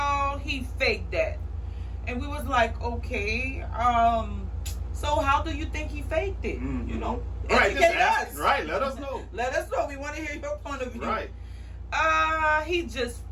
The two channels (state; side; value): identical; both; correlation 1.00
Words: he faked that. And we was like, okay, so how do you think he faked it? Educate us. Right, let us know. Let us know. We want to hear your point of view. Right. He just